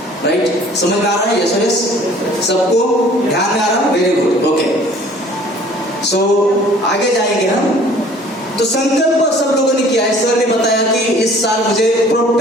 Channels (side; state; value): both; normal; correlation 0.52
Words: राइट? समझ में आ रहा है? यस यस, सबको ध्यान में आ रहा है? Very good, okay. सो आगे जाएंगे हम। तो संकल्प सब लोगों ने किया है। सर ने बताया कि इस साल मुझे